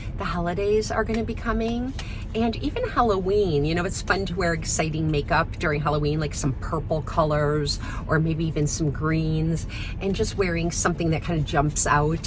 the holidays are going to be coming, and even Halloween. You know, it's fun to wear exciting makeup during Halloween, like some purple colors or maybe even some greens, and just wearing something that kind of jumps out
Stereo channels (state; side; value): identical; both; correlation 1.00